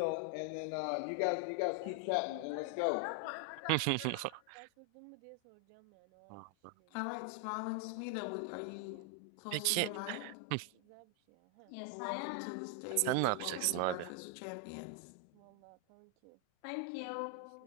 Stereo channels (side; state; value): both; different; correlation 0.01